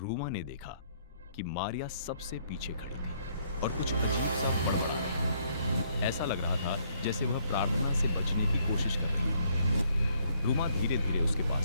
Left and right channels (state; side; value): inverted; both; correlation -0.68